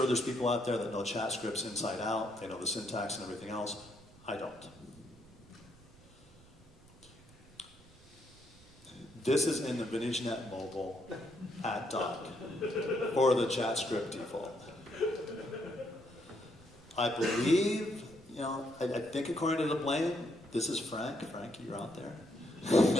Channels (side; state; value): right; noise; rumble, 25 dB below the sound